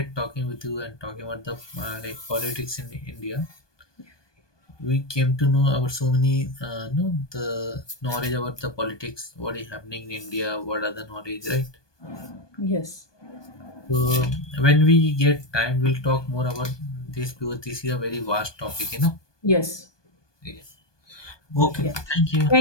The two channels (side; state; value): right; late; 1.2 ms